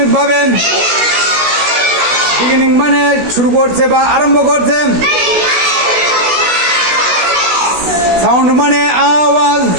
বিগিনিং মানে শুরু করছে বা আরম্ভ করছে, সাউন্ড মানে আওয়াজ,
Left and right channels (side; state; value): left; late; 16 ms